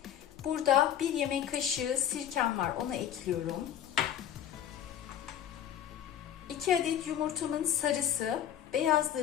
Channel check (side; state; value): right; quieter; 10.3 dB